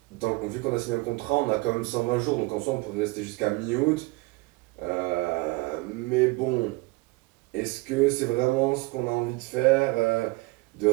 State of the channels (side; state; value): left; quieter; 23.6 dB